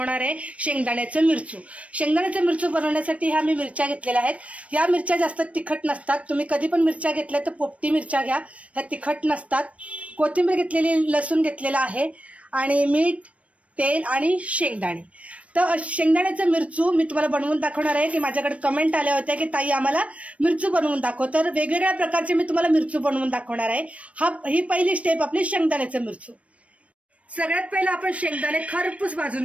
आहे शेंगदाण्याचं मिरचू। शेंगदाण्याचं मिरचू बनवण्यासाठी ह्या मी मिरच्या घेतलेल्या आहेत। या मिरच्या जास्त तिखट नसतात। तुम्ही कधी पण मिरच्या घेतल्या तर पोपटी मिरच्या घ्या, ह्या तिखट नसतात। कोथिंबीर घेतलेली, लसूण घेतलेला आहे आणि मीठ, तेल आणि शेंगदाणे। तर शेंगदाण्याचं मिरचू मी तुम्हाला बनवून दाखवणार आहे की माझ्याकडे कमेंट आल्या होत्या की ताई आम्हाला मिरचू बनवून दाखव। तर वेगवेगळ्या प्रकारचे मी तुम्हाला मिरचू बनवून दाखवणार आहे। ही पहिली स्टेप आपली शेंगदाण्याचं मिरचू। सगळ्यात पहिलं आपण शेंगदाणे खरपूस भाजून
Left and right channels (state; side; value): late; left; 0.064 ms